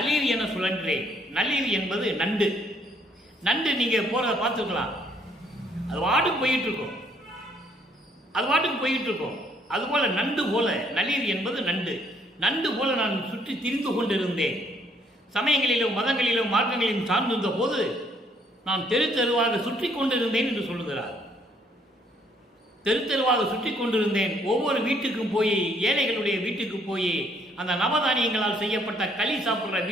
என சுழன்றேன். நளிர் என்பது நண்டு. நண்டு நீங்க போறதை பார்த்துக்கலாம், அது வாட்டுக்கு போயிட்டு இருக்கும், அது வாட்டுக்கு போயிட்டு இருக்கும். அதுபோல நண்டு போல, நளிர் என்பது நண்டு. நண்டு போல நான் சுற்றி திரிந்து கொண்டிருந்தேன். சமயங்களிலும் மதங்களிலும் மார்க்கங்களிலும் சார்ந்திருந்த போது நான் தெரு தெருவாக சுற்றி கொண்டிருந்தேன் என்று சொல்லுகிறார். தெரு தெருவாக சுற்றி கொண்டிருந்தேன். ஒவ்வொரு வீட்டுக்கும் போய், ஏழைகளுடைய வீட்டுக்கு போய், அந்த நவதானியங்களால் செய்யப்பட்ட களி சாப்பிட்ற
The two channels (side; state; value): both; normal; correlation 0.66